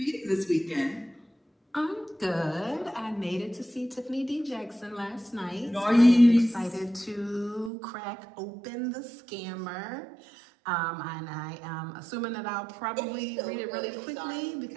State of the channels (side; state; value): left; drops out; at 7.7 s